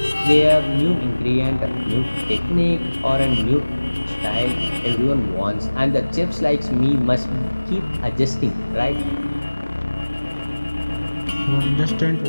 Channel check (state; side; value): inverted; both; correlation -1.00